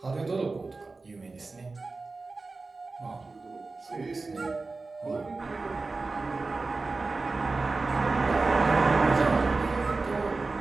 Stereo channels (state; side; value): quieter; left; 3.7 dB